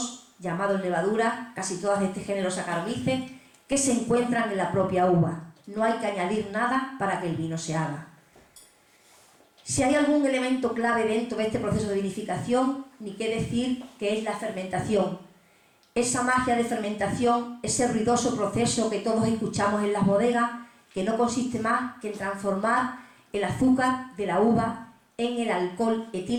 llamados levadura, casi todas de este género Saccharomyces, que se encuentran en la propia uva. No hay que añadir nada para que el vino se haga. Si hay algún elemento clave dentro de este proceso de vinificación, ni qué decir que es la fermentación. Esa magia de fermentación, ese ruidoso proceso que todos escuchamos en las bodegas, que no consiste más que en transformar el azúcar de la uva en el alcohol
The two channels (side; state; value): both; identical; correlation 1.00